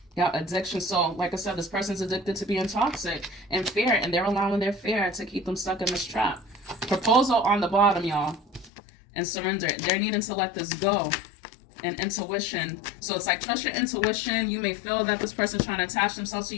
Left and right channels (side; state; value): right; drops out; at 8.7 s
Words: Yeah, addiction. So, like I said, this person's addicted to being toxic and fear, and they're allowing their fear to keep them stuck in this trap. Proposal on the bottom, y'all. And surrender. They're needing to let this go. And intuition. So it's like, trust your intuition. You may feel that this person's trying to attach themselves to